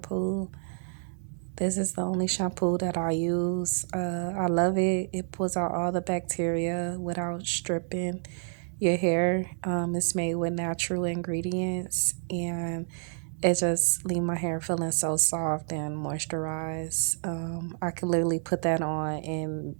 This is the only shampoo that I use. I love it. It pulls out all the bacteria without stripping. your hair. It's made with natural ingredients, and it just leave my hair feeling so soft and moisturized. I could literally put that on and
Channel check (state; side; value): silent; left; 59 dB below the other